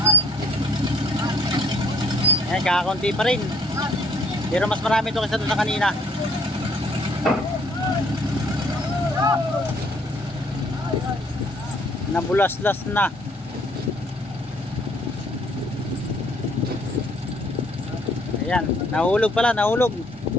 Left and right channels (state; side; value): normal; both; correlation 0.62